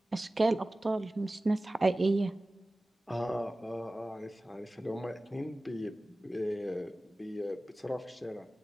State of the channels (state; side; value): normal; both; correlation 0.97